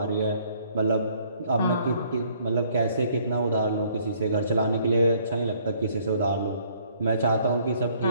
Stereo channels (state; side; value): inverted; both; correlation -0.63